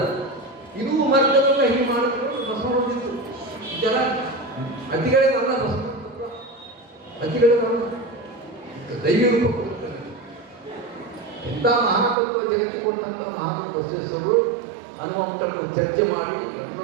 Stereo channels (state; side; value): drops out; left; at 12.2 s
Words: ಇದು ಮಾರ್ಗದಲ್ಲ ಹೀಗೆ ಮಾಡಿದ್ರು ಬಸವಣ್ಣಿತ್ತು ಇದೆಲ್ಲ ಅತಿಗಳಿಗಲ್ಲ ಬಸವಣ್ಣ ಅತಿಗಳಿಗಲ್ಲ ದೈವ ರೂಪ ಕೊಡ್ತಾರೆ ಎಂಥ ಮಹಾತತ್ವ ಜಗತ್ತಿಗೆ ಕೊಟ್ಟಂಥ ಮಹಾತ್ಮ ಬಸವೇಶ್ವರರು ಹನುಮಂತರನ್ನು ಚರ್ಚೆ ಮಾಡಿ